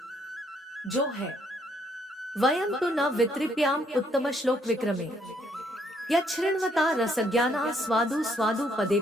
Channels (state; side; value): normal; both; correlation 0.69